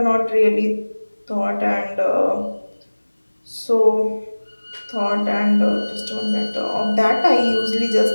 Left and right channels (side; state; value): both; inverted; correlation -1.00